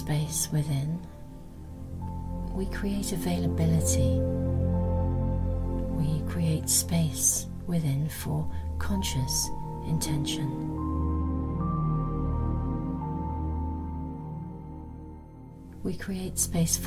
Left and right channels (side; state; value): both; identical; correlation 1.00